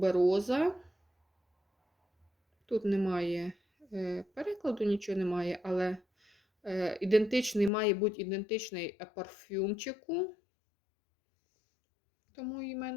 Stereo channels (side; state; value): right; drops out; at 7.7 s